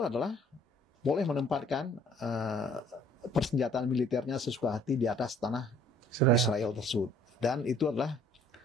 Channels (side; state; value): both; normal; correlation 0.57